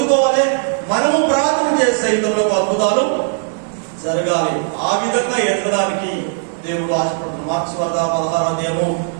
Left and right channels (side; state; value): left; silent; digital silence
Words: మనము ప్రార్థన చేసే ఇతరులకు అద్భుతాలు జరగాలి. ఆ విధంగా ఎదగడానికి దేవుడు ఆశపడుతున్నాడు. మార్క్స్ వార్త 16వ అధ్యాయము,